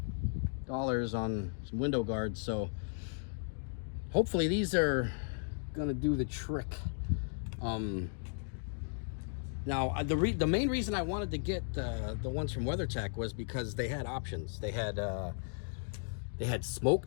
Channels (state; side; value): silent; right; digital silence